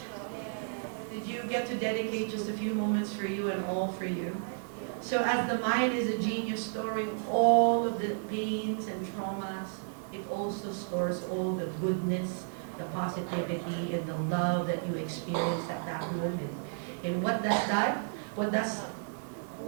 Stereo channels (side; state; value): left; silent; digital silence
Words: Yes. Did you get to dedicate just a few moments for you and all for you? So as the mind is a genius storing all of the pains and traumas, it also stores all the goodness, the positivity, and the love that you experience at that moment. And what does that?